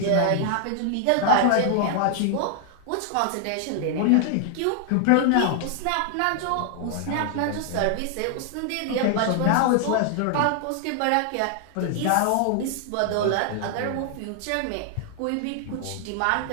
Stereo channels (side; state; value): both; different; correlation 0.00